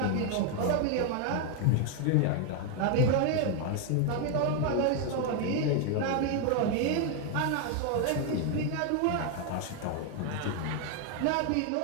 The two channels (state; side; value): different; both; correlation 0.00